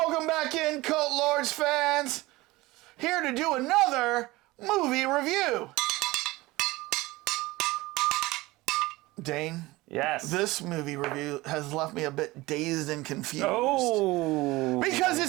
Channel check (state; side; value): quieter; left; 20.2 dB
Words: back in, Cult Lords fans. Here to do another movie review. Dane? Yes. This movie review has left me a bit dazed and confused. Oh. Because